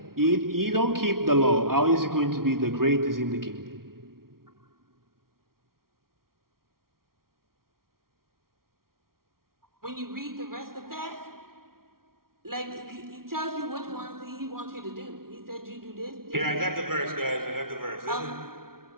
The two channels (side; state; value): left; late; 0.93 ms